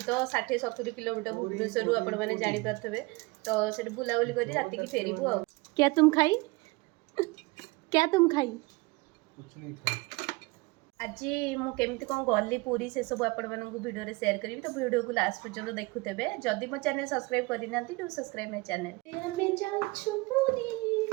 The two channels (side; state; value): left; quieter; 24.6 dB